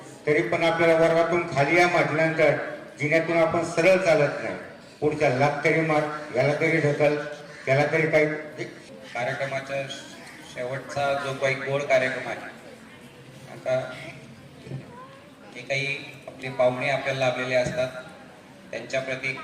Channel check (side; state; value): both; identical; correlation 1.00